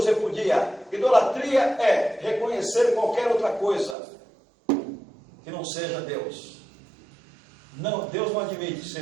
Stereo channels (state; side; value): drops out; left; at 4.0 s